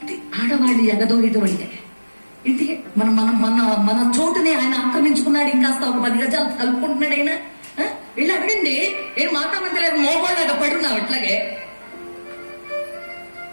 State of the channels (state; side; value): inverted; both; correlation -1.00